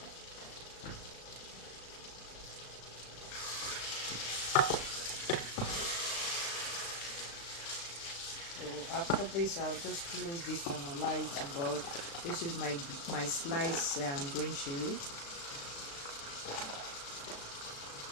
After this, I'll just close this and allow it to boil. This is my sliced green chili.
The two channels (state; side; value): late; right; 36 ms